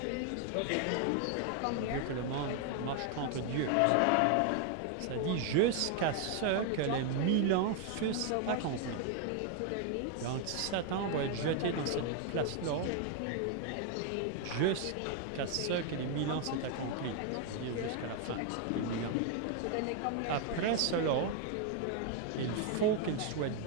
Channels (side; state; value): both; different; correlation 0.00